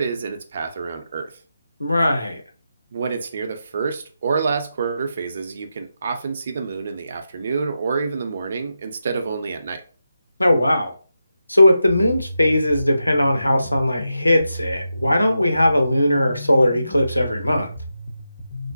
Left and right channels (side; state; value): both; inverted; correlation -0.88